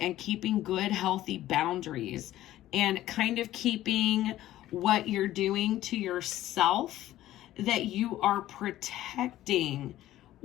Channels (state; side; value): quieter; right; 14.2 dB